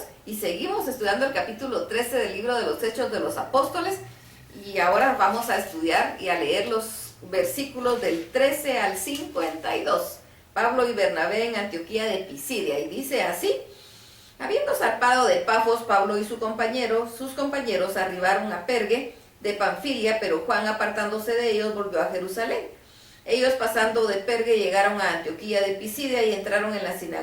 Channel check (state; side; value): identical; both; correlation 1.00